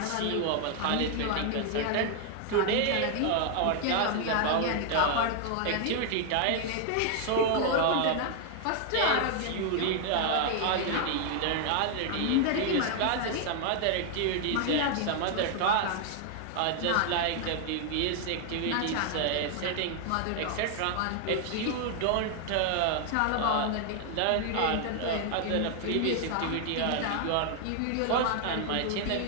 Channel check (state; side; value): different; both; correlation 0.00